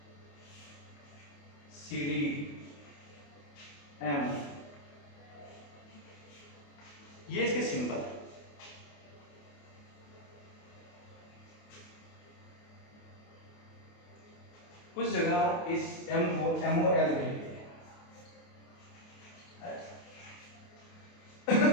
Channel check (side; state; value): right; late; 28 ms